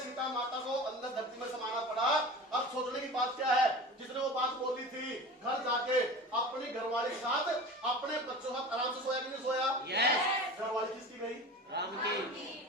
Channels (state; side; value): normal; both; correlation 0.34